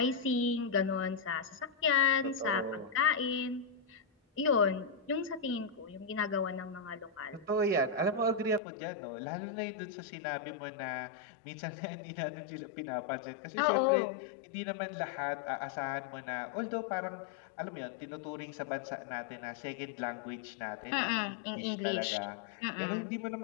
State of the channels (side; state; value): right; drops out; at 8.6 s